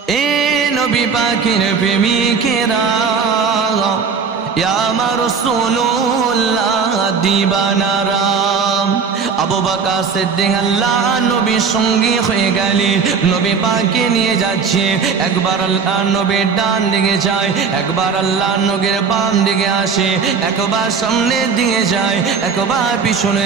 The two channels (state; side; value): quieter; left; 5.7 dB